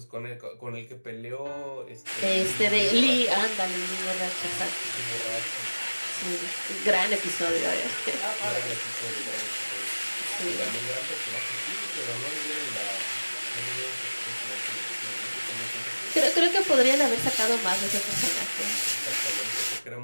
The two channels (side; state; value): both; inverted; correlation -1.00